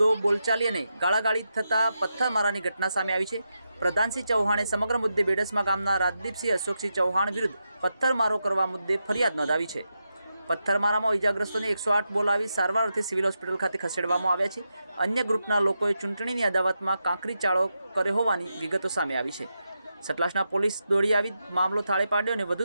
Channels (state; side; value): inverted; both; correlation -0.87